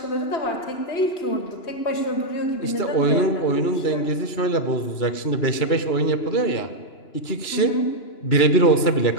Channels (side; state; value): right; late; 2.9 ms